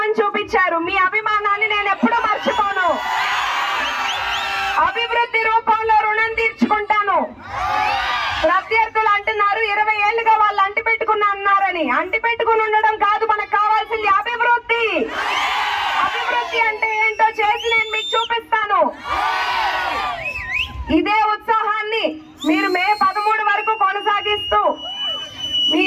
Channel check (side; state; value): both; identical; correlation 1.00